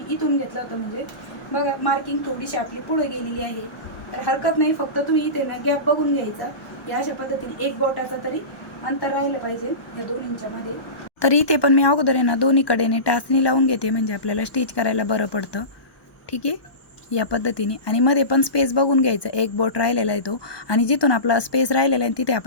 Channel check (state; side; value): late; right; 1.2 ms